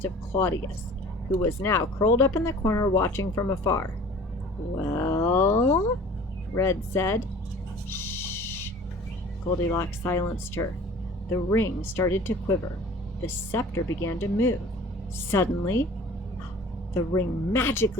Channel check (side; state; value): both; normal; correlation 0.46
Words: of Claudius, who was now curled up in the corner watching from afar. "Well," Red said. "Shh." Goldilocks silenced her. The ring started to quiver. The scepter began to move. Suddenly, the ring